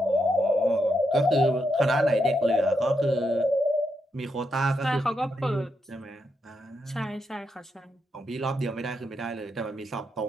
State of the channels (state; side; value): normal; both; correlation 0.82